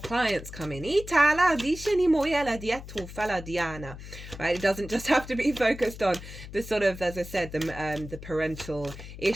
coming. Right? It doesn't just have to be focused on the sort of, as I said, the parental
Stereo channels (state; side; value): noise; left; hum, 13 dB below the sound